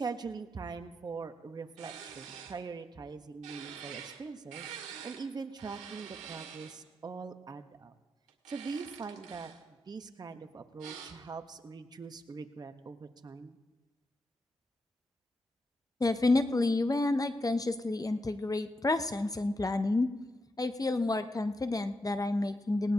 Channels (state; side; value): normal; both; correlation 0.85